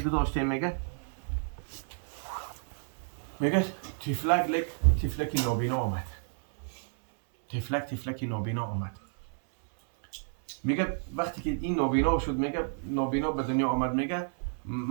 گذاشتیم میگه تفلک نابینا آمد. تفلک نابینا آمد. میگه وقتی که این نابینا شد، میگه نابینا به دنیا آمد، میگه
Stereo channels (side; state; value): left; silent; 57 dB below the other